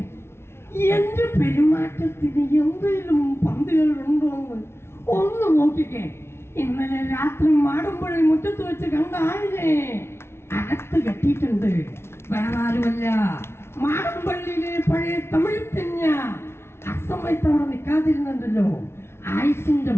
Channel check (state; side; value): late; right; 0.12 ms